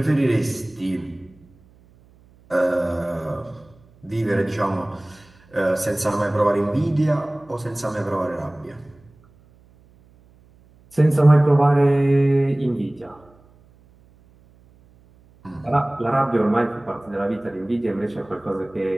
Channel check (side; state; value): right; noise; hum, 29 dB below the sound